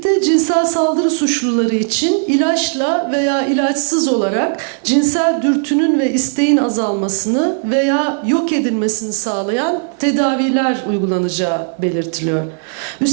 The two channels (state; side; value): silent; left; 59 dB below the other